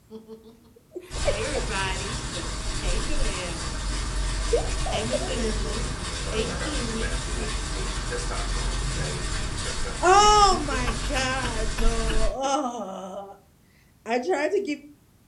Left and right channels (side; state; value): both; identical; correlation 1.00